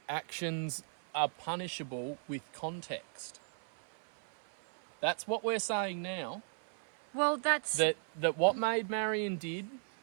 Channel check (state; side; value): silent; left; 53 dB below the other